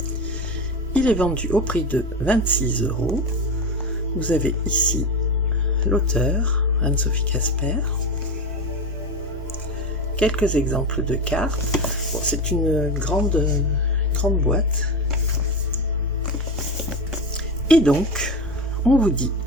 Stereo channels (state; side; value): normal; both; correlation 0.20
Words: Il est vendu au prix de 26 €. Vous avez ici l'auteur, Anne-Sophie Casper. Quelques exemples de cartes. Bon, c'est une grande boîte. Et donc, on vous dit